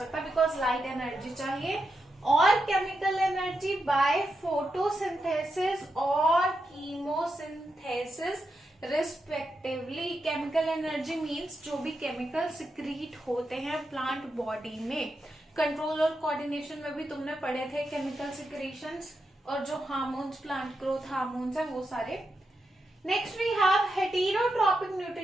बिकॉज लाइट एनर्जी चाहिए। और केमिकल एनर्जी बाय फोटोसिंथेसिस और chemosynthesis respectively. Chemical energy means जो भी केमिकल सिक्रीट होते हैं प्लांट बॉडी में। कंट्रोल और कोऑर्डिनेशन में भी तुमने पढ़े थे केमिकल सिक्रीशंस, और जो हार्मोन्स, प्लांट ग्रोथ हार्मोन्स है, वो सारे। Next we have heterotropic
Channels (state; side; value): normal; both; correlation 0.86